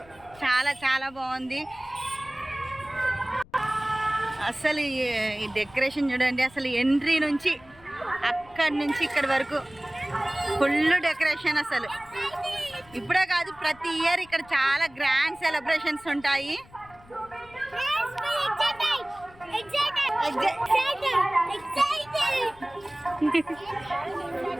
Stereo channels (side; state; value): left; noise; rumble, 25 dB below the sound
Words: చాలా చాలా బాగుంది. అసలు ఈ డెకరేషన్ చూడండి, అసలు ఎంట్రీ నుంచి అక్కడి నుంచి ఇక్కడి వరకు ఫుల్ డెకరేషన్. అసలు ఇప్పుడే కాదు, ప్రతి ఇయర్ ఇక్కడ చాలా గ్రాండ్ సెలబ్రేషన్స్ ఉంటాయి.